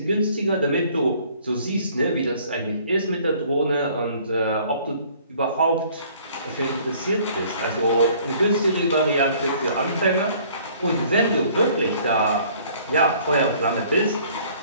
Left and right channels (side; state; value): both; inverted; correlation -0.56